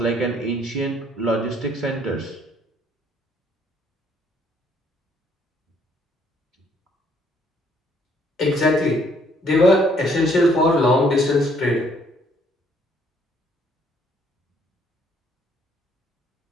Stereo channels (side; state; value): both; normal; correlation 0.65